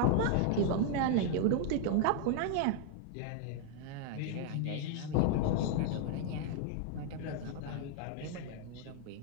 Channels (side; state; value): both; different; correlation 0.00